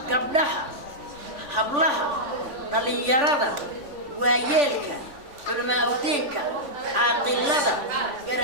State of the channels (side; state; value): left; late; 3.5 ms